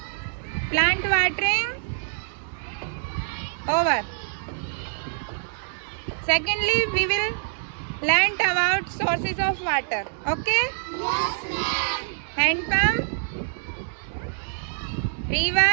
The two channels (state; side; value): silent; left; digital silence